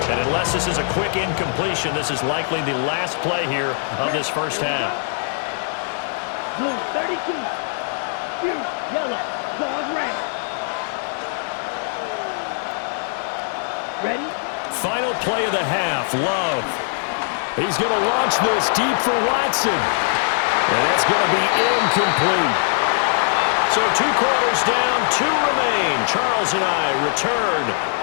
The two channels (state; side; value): silent; right; 65 dB below the other